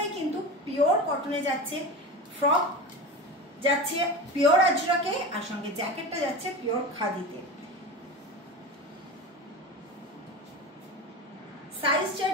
কিন্তু পিওর কটনে যাচ্ছে। ফ্রক যাচ্ছে পিওর আজরাকে, আর সঙ্গে জ্যাকেটটা যাচ্ছে পিওর খাদিতে। সাইজ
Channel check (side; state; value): both; normal; correlation 0.28